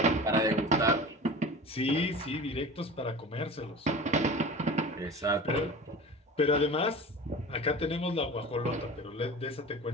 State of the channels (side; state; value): both; normal; correlation 0.35